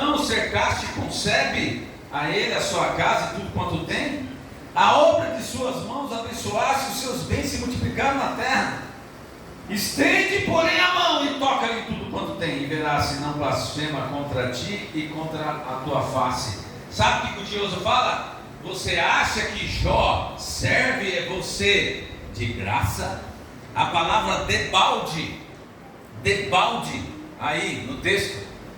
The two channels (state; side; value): identical; both; correlation 1.00